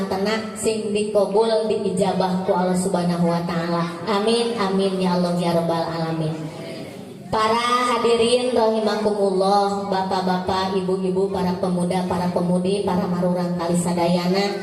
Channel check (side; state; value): both; identical; correlation 1.00